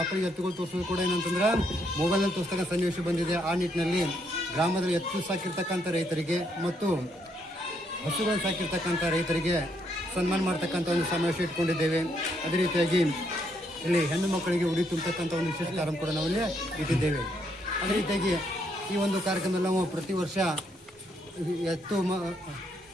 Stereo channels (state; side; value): normal; both; correlation 0.74